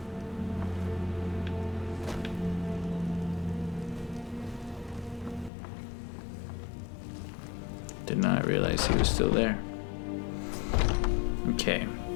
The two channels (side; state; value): right; drops out; at 5.5 s